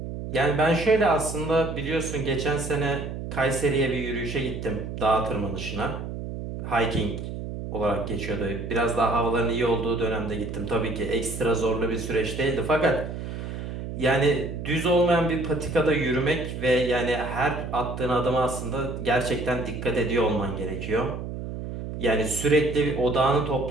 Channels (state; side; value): noise; right; hum, 7 dB below the sound